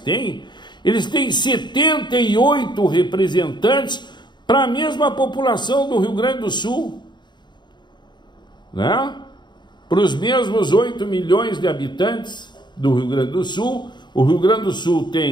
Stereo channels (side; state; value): right; late; 0.22 ms